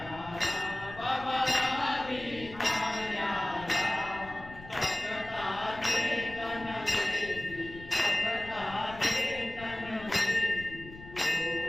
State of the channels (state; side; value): noise; left; rumble, 16 dB below the sound